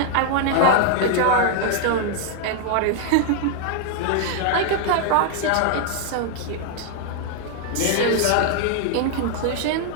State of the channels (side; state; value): both; different; correlation 0.00